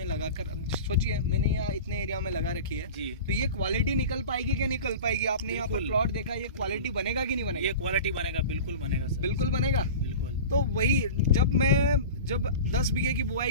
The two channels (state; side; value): inverted; both; correlation -0.33